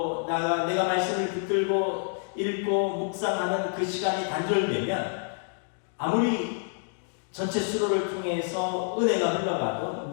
내가 말씀을 붙들고 읽고 묵상하는 그 시간이 단절되면 아무리 전체 수로를 통해서 은혜가 흘러가도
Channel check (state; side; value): silent; right; digital silence